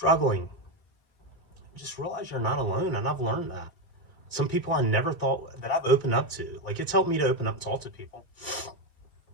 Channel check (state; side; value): late; right; 1.8 ms